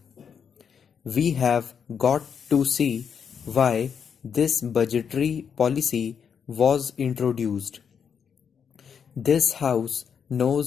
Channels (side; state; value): right; quieter; 7.1 dB